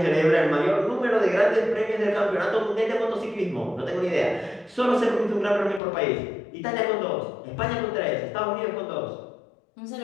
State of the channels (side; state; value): right; drops out; at 5.8 s